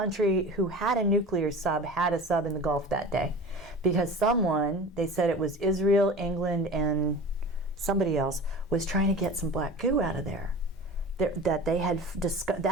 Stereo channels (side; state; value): both; normal; correlation 0.36